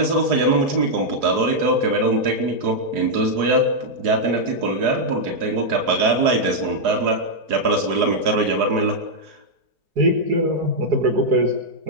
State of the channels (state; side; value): late; left; 4.8 ms